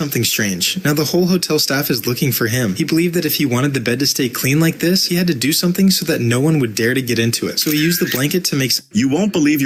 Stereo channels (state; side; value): identical; both; correlation 1.00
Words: strange. Now the whole hotel staff is looking for him. He believed that if he wanted the bed to stay clean like this, he had to do something so that no one would dare to get into it. So he used the blanket to make You won't believe